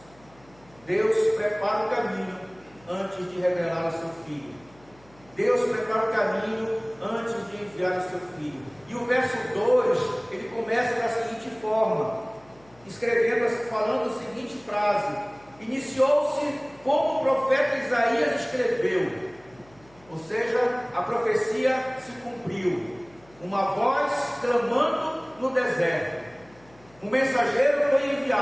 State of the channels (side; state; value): left; noise; hum, 28 dB below the sound